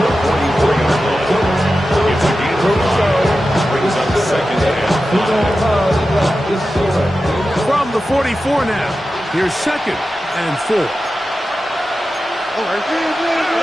44-yard line. It's a gain of 5. Brings up second and 5. From the 44 now, here's second and 4.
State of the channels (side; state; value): both; normal; correlation 0.92